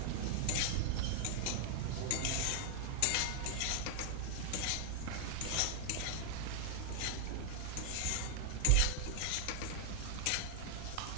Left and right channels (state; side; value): different; both; correlation 0.00